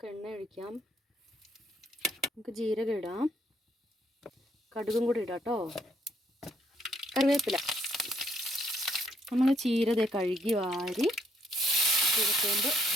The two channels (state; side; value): normal; both; correlation 0.69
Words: എണ്ണ ഒഴിക്കാം. നമുക്ക് ജീരകം ഇടാം, കടുകും കൂടി ഇടാം കേട്ടോ. കറിവേപ്പില. നമ്മൾ ചീര കഴുകി വാരി ചീരച്ചേമ്പ്